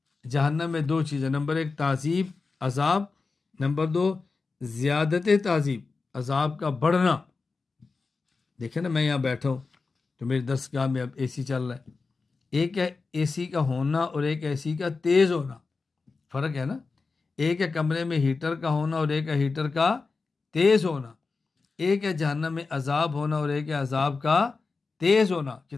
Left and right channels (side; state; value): right; quieter; 4.2 dB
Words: جہنم میں دو چیزیں، نمبر ایک تعذیب عذاب، نمبر دو زیادت تعذیب عذاب کا بڑھنا۔ دیکھیں نا، میں یہاں بیٹھا ہوں تو میری درسگاہ میں اب اے سی چل رہا ہے، ایک ہے اے سی کا ہونا اور ایک اے سی کا تیز ہونا، فرق ہے نا۔ ایک ہے کمرے میں ہیٹر کا ہونا اور ایک ہے ہیٹر کا تیز ہونا، ایک ہے جہنم میں عذاب ہونا اور ایک ہے عذاب کا تیز ہونا،